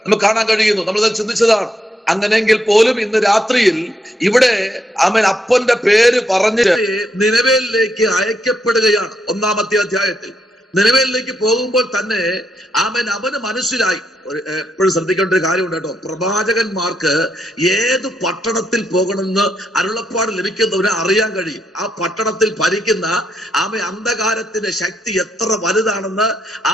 നമുക്ക് കാണാൻ കഴിയുന്നു. നമ്മളത് ചിന്തിച്ചതാണ്. അങ്ങനെയെങ്കിൽ പോലും ഇന്ന് രാത്രിയിൽ ഇവിടെ അവൻ അപ്പന്റെ പേര് പറഞ്ഞ് നിനവേലിലേക്ക് അയക്കപ്പെടുകയാണ്. 1-ാമത്തെ അധ്യായത്തിൽ നിനവേലിലേക്ക് പോകുമ്പോൾ തന്നെ അവന് മനസ്സിലായി. എപ്പോഴും ശ്രദ്ധിക്കേണ്ട ഒരു കാര്യമുണ്ട് കേട്ടോ. പ്രവാചകന്മാർക്ക് ഏത് പട്ടണത്തിൽ പോകണമെന്ന് അരുളപ്പാട് ലഭിക്കുന്നവരെ അറിയാൻ കഴിയും. ആ പട്ടണത്തിൽ ഭരിക്കുന്ന അന്ധകാരത്തിന്റെ ശക്തി എത്ര വലുതാണെന്ന്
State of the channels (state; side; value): normal; both; correlation 0.77